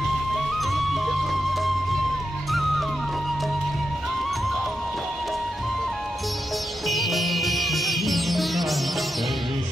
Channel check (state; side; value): normal; both; correlation 0.87